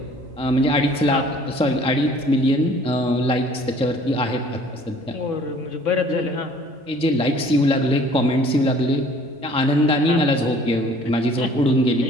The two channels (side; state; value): both; normal; correlation 0.54